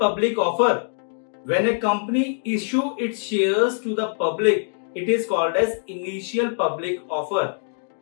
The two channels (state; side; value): silent; right; digital silence